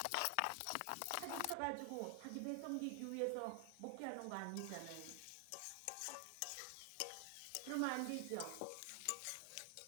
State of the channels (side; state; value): both; different; correlation 0.00